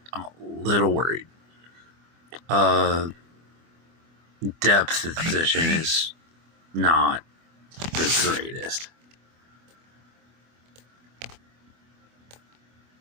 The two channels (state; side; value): late; left; 24 ms